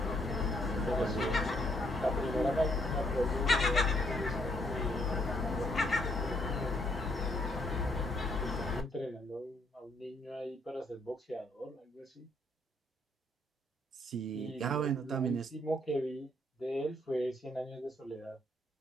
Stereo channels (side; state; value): both; normal; correlation 0.70